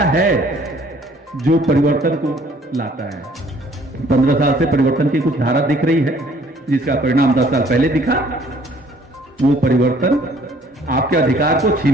है जो परिवर्तन को लाता है। 15 साल से परिवर्तन की कुछ धारा दिख रही है, जिसका परिणाम 10 साल पहले दिखा। वो परिवर्तन आपके अधिकार को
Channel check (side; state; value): both; normal; correlation 0.58